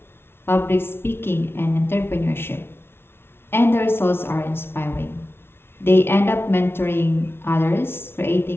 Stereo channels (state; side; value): late; right; 0.12 ms